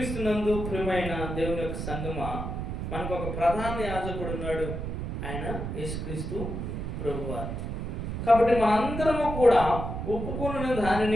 ప్రియమైన దేవుని యొక్క సంగమా, మనకు ఒక ప్రధాన యాజకుడు ఉన్నాడు, ఆయన యేసుక్రీస్తు ప్రభువారు. కాబట్టి మనందరము కూడా ఒప్పుకున్న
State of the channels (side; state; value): right; noise; rumble, 4 dB below the sound